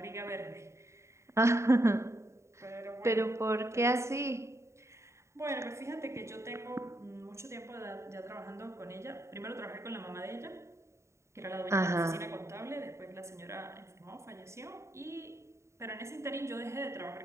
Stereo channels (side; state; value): left; late; 0.14 ms